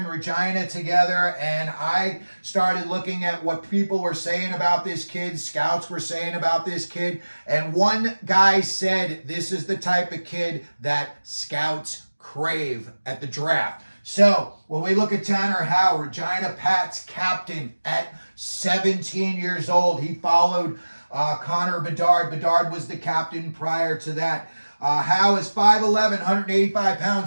Regina together, and I started looking at what people were saying about this kid, scouts were saying about this kid, and one guy said this is the type of kid that scouts crave at the draft. So when we look at Tanner Howe, Regina Pat's captain at 17 years old, he followed Connor Bedard. Bedard was the captain prior to that. Howe is 5'11", 185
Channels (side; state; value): both; inverted; correlation -1.00